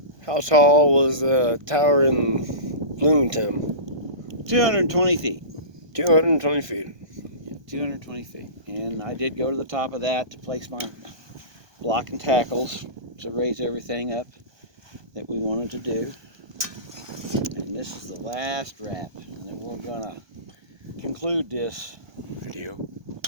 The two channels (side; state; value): left; late; 1.2 ms